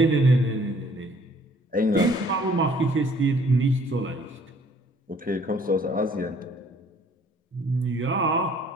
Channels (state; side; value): normal; both; correlation 0.59